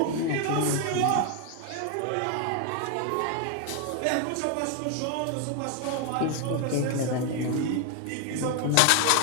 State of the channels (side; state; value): both; different; correlation 0.01